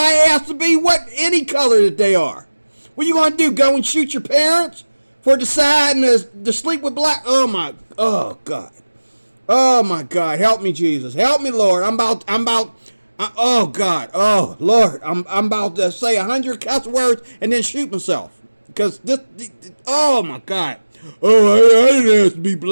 ask to be any color that they are. What you gonna do? Go and shoot your parents for deciding to sleep with black? Oh God. Oh my God. Help me, Jesus. Help me, Lord. Oh God. Oh Lord. I'm about to say 100 cuss words and then shoot myself. Because oh my God. Oh, I didn't ask to be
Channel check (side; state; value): both; inverted; correlation -1.00